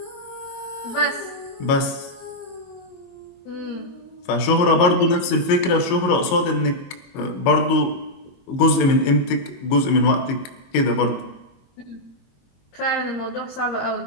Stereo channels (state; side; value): late; right; 22 ms